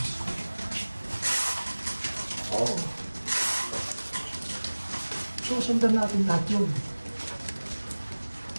Susundan natin lahat yun.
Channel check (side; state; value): both; inverted; correlation -1.00